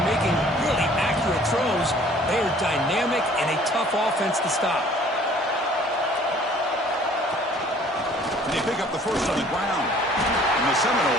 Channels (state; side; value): normal; both; correlation 0.54